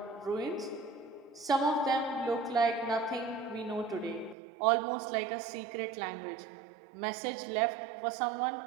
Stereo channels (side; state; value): left; drops out; at 4.4 s